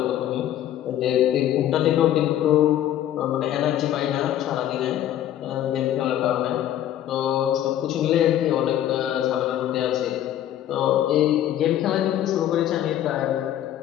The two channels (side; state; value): right; quieter; 11.8 dB